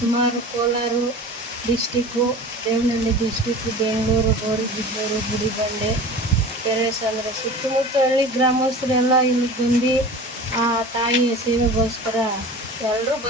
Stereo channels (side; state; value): both; normal; correlation 0.37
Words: ಕೋಲಾರ ಡಿಸ್ಟಿಕ್ಕು, ದೇವನಹಳ್ಳಿ ಡಿಸ್ಟಿಕ್ಕು, ಬೆಂಗಳೂರು, ಗೌರಿಬಿದನೂರು, ಗುಡಿಬಂಡೆ, ಕೆರೆಸಂದ್ರ ಸುತ್ತಮುತ್ತ ಹಳ್ಳಿ ಗ್ರಾಮಸ್ಥರೆಲ್ಲ ಇಲ್ಲಿ ಬಂದು ಆ ತಾಯಿಯ ಸೇವೆಗೋಸ್ಕರ ಎಲ್ಲರೂ